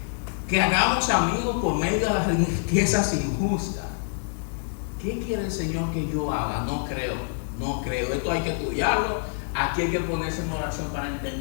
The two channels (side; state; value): right; silent; digital silence